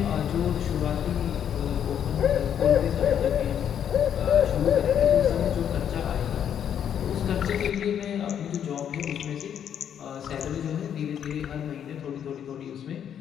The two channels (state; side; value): quieter; right; 9.0 dB